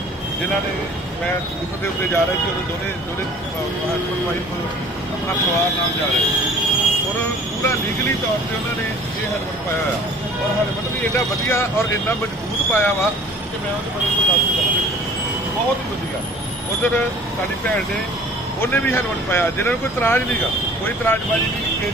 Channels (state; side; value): normal; both; correlation 0.48